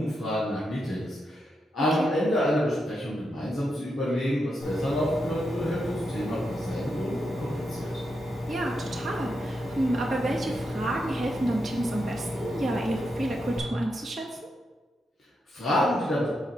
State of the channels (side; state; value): both; normal; correlation 0.84